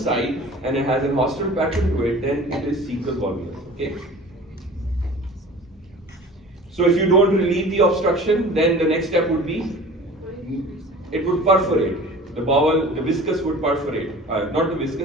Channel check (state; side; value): normal; both; correlation 0.42